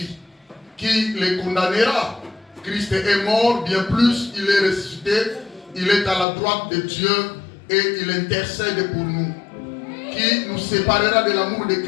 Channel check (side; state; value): right; drops out; at 6.2 s